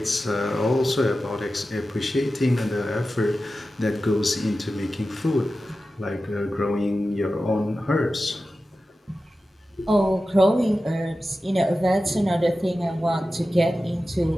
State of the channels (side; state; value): both; normal; correlation 0.94